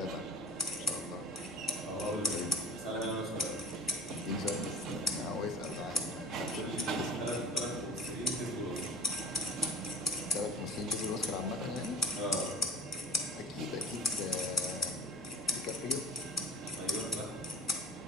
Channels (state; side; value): noise; left; rumble, 27 dB below the sound